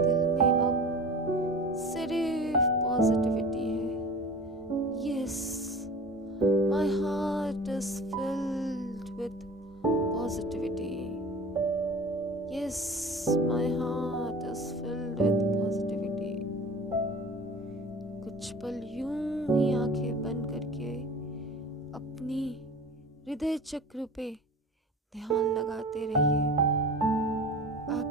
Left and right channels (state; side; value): normal; both; correlation 0.38